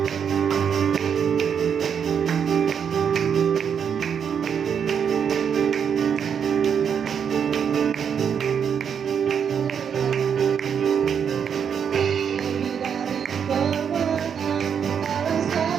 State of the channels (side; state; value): left; quieter; 7.5 dB